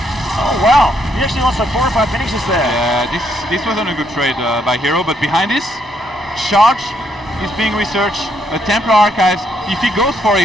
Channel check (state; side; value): normal; both; correlation 0.73